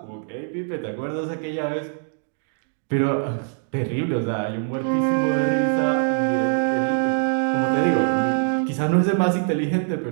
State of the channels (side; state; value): left; silent; digital silence